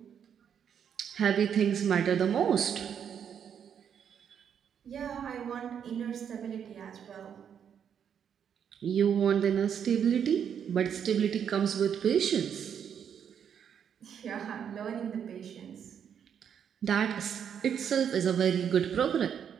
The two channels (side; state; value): left; quieter; 8.2 dB